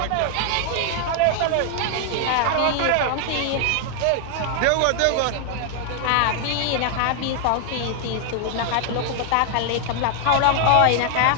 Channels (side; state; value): both; different; correlation 0.00